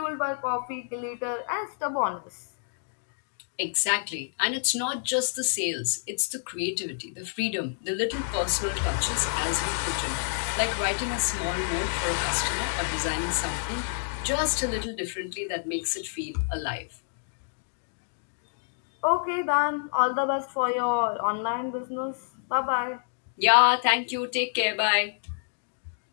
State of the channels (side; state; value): right; silent; digital silence